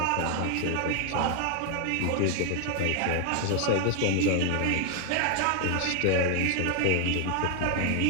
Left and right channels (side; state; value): both; different; correlation 0.00